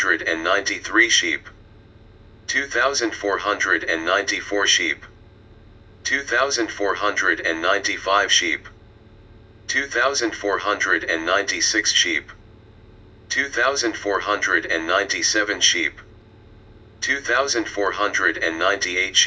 sheep, 2,494 sheep, 2,495 sheep, 2,496 sheep, 2,497 sheep, 2,498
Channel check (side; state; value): both; identical; correlation 1.00